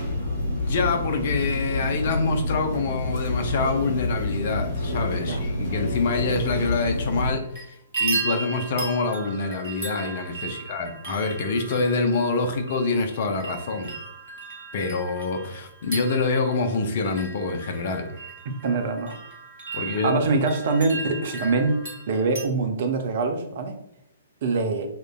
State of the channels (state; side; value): inverted; both; correlation -0.53